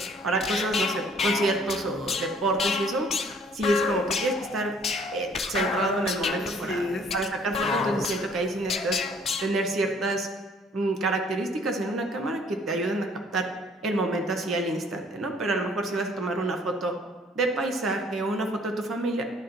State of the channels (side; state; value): both; normal; correlation 0.58